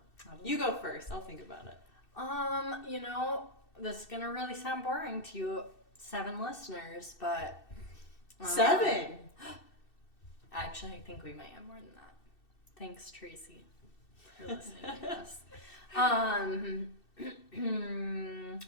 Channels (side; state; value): right; late; 2.6 ms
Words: You go first. I'll think about it. You know, this is gonna really sound boring to you 7 listeners, but 7. Actually, I think we might have more than that. Thanks, Tracy, for listening to us. I